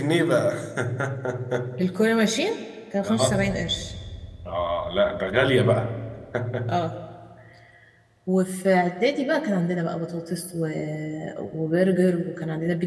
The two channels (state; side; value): identical; both; correlation 1.00